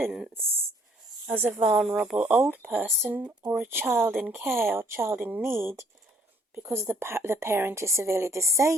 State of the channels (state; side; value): normal; both; correlation 0.63